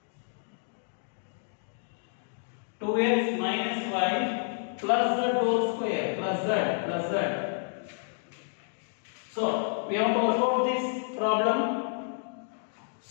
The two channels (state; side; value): silent; right; 58 dB below the other